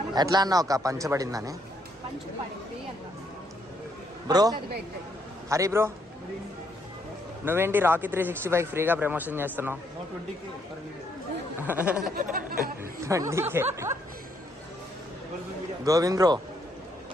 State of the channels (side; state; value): both; normal; correlation 0.72